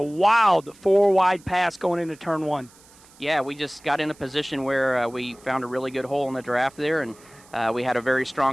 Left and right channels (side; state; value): right; noise; hiss, 26 dB below the sound